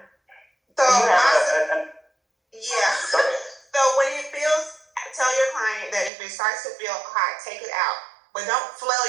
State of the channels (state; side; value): drops out; left; at 6.1 s